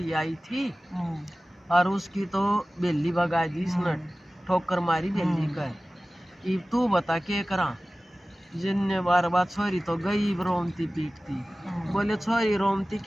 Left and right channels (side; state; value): both; normal; correlation 0.97